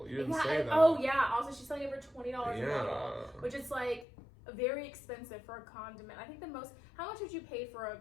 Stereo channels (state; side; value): drops out; right; at 4.0 s